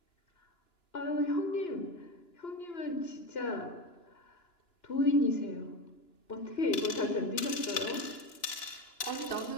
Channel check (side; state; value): right; late; 2.9 ms